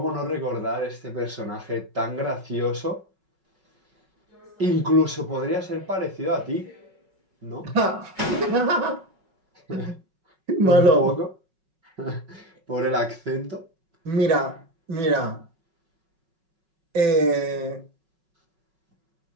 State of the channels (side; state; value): left; late; 5.4 ms